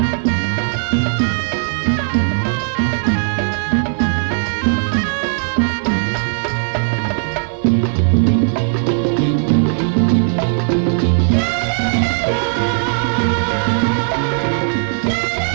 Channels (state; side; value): silent; left; digital silence